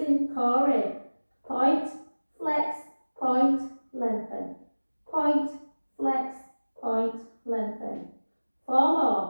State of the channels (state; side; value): inverted; both; correlation -1.00